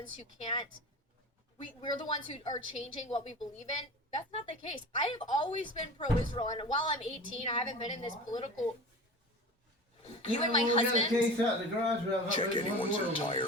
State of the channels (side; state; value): both; normal; correlation 0.34